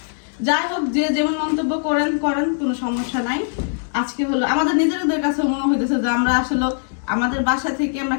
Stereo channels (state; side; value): silent; right; digital silence